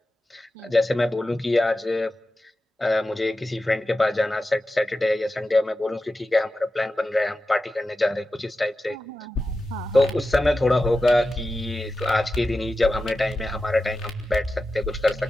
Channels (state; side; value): normal; both; correlation 0.93